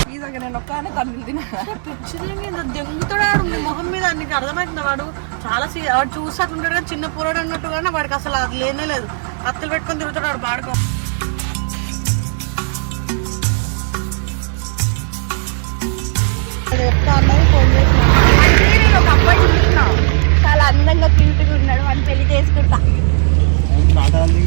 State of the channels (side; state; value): left; silent; 56 dB below the other